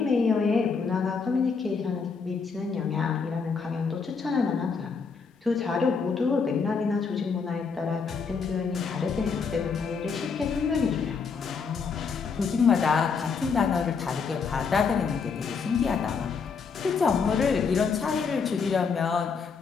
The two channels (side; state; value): right; quieter; 5.4 dB